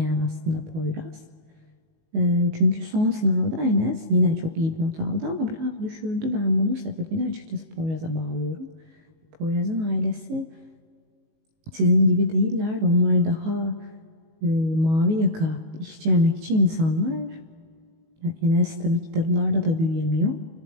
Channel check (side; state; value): left; late; 19 ms